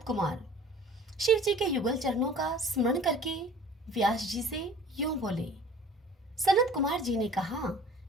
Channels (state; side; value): normal; both; correlation 0.46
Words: कुमार शिव जी के युगल चरणों का स्मरण करके व्यास जी से यूं बोले। सनत कुमार जी ने कहा